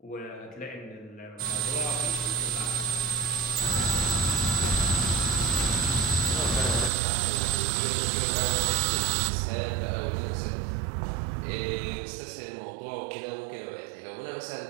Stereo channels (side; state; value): left; drops out; at 6.9 s